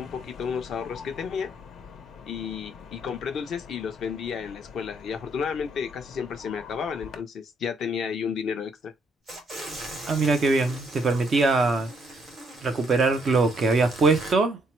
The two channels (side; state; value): both; normal; correlation 0.70